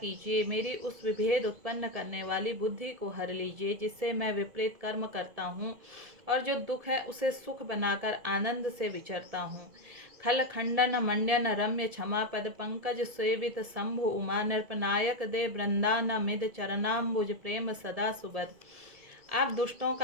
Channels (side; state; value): left; late; 1.7 ms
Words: मेरी उस विभेद उत्पन्न करने वाली बुद्धि को हर लीजिए, जिससे मैं विपरीत कर्म करता हूँ और जो दुख है उसे सुख बनाकर आनंद से विचरता हूँ। खल खंडन मंडन रम्य क्षमा पद पंकज सेवित शंभु उमा। नृपनायक दे वृंदानमिद चरणाम्बुज प्रेम सदा सुबद। आप दुष्टों